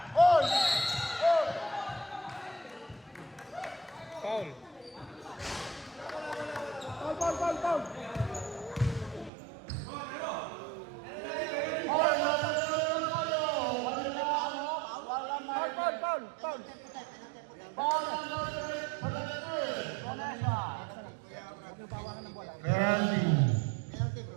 Hold. Foul. Foul.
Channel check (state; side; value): drops out; left; at 9.3 s